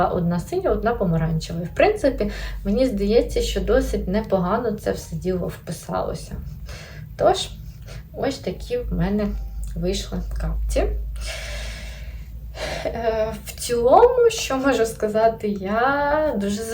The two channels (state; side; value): identical; both; correlation 1.00